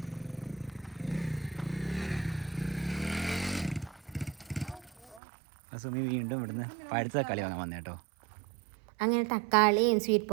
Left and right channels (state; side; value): drops out; left; at 5.2 s